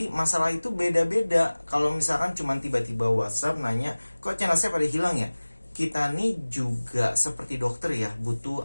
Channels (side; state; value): both; inverted; correlation -1.00